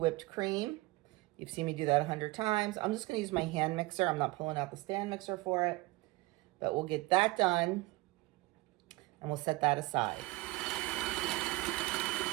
cream. You've seen me do that 100 times. I'm just going to use my hand mixer. I'm not pulling out the stand mixer for it. But we'll get that done and we'll set that aside.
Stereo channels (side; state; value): left; quieter; 21.1 dB